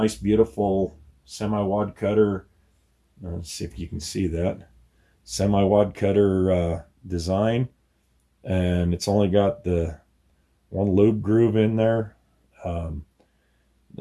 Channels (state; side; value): identical; both; correlation 1.00